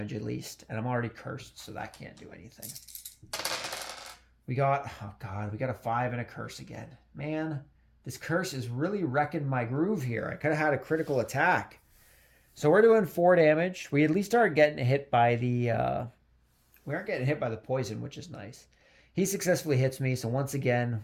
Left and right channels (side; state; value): both; identical; correlation 1.00